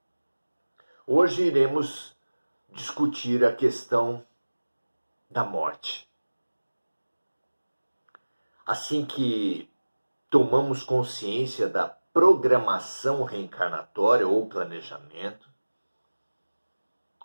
Hoje iremos discutir a questão da morte. Assim que tomamos consciência da programação reencarnatória ou planejamento,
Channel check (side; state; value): both; inverted; correlation -1.00